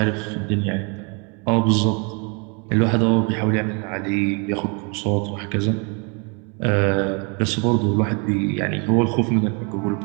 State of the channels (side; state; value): left; quieter; 34.2 dB